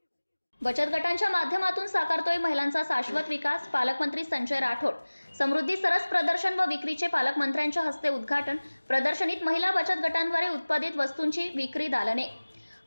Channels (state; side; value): inverted; both; correlation -1.00